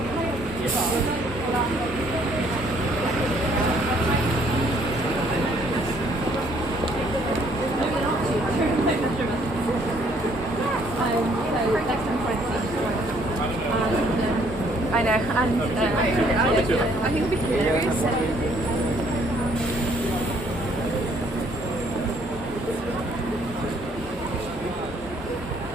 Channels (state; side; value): normal; both; correlation 0.64